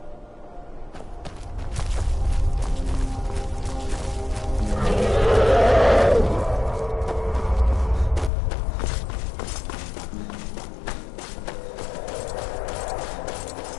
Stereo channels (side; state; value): right; drops out; at 8.3 s